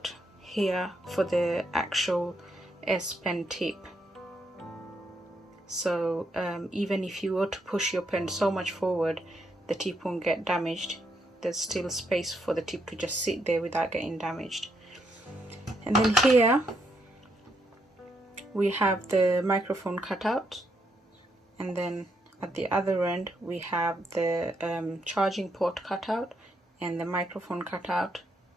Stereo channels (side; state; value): both; normal; correlation 0.77